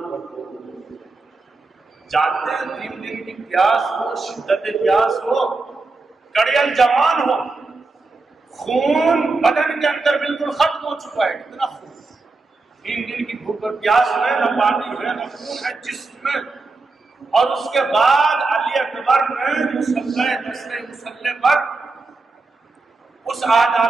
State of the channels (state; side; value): quieter; left; 3.6 dB